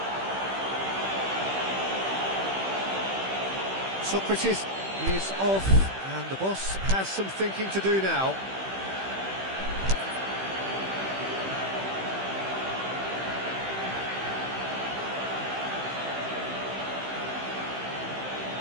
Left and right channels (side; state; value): left; late; 15 ms